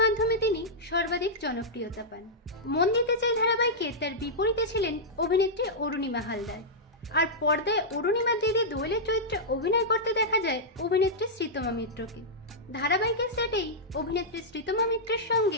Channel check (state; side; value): normal; both; correlation -0.09